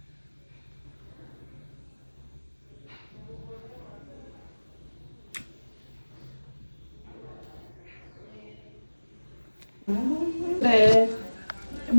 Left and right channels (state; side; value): inverted; both; correlation -1.00